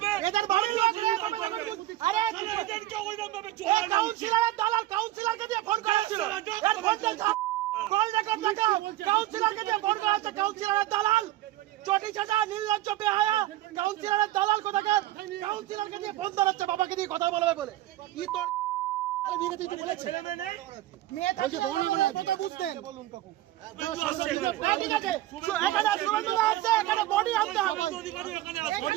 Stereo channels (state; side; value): quieter; left; 15.4 dB